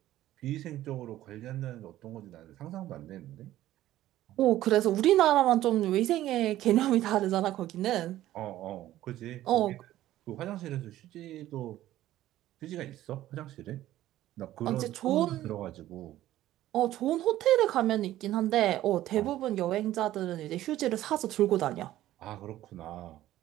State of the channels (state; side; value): quieter; left; 14.1 dB